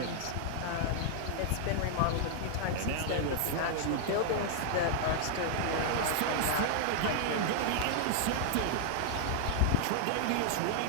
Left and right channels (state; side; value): different; both; correlation 0.00